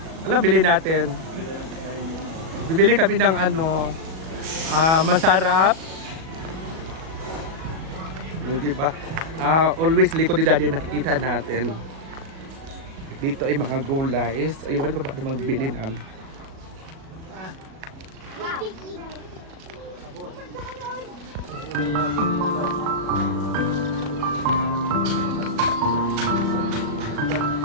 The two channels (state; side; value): late; left; 37 ms